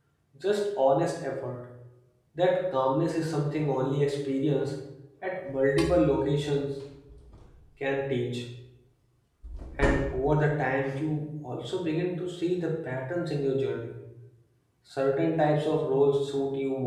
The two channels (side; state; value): both; identical; correlation 1.00